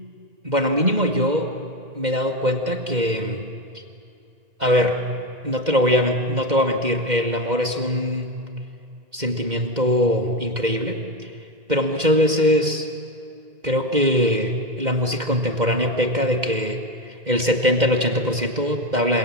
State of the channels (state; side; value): late; left; 2.1 ms